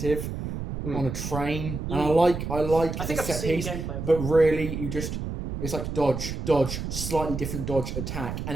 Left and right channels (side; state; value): right; noise; rumble, 5 dB below the sound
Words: on a train, and I like I think the I've set seen piece, gameplay. but really it's like dodge, slightly different dodge, attack,